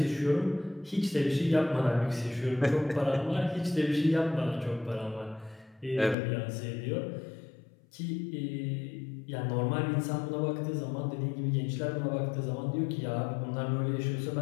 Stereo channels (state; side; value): drops out; right; at 6.2 s